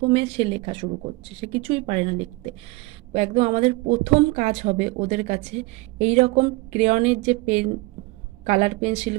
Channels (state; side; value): quieter; left; 22.6 dB